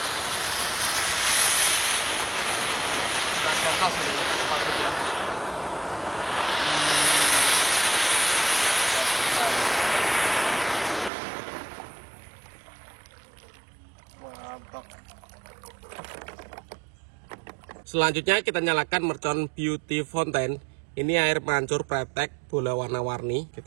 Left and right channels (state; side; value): drops out; left; at 11.1 s